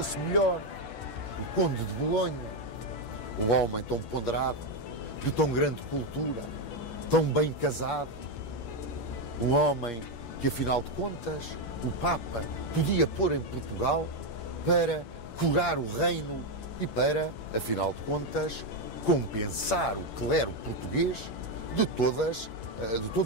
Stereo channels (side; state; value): right; late; 11 ms